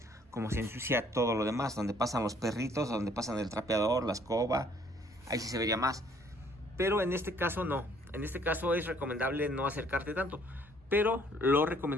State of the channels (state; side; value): normal; both; correlation 0.62